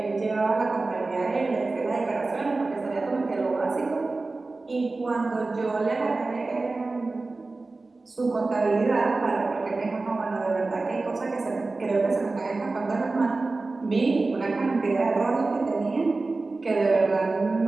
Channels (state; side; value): quieter; left; 3.5 dB